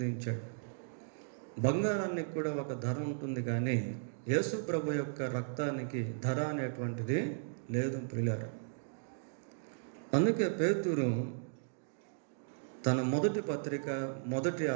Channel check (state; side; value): silent; left; digital silence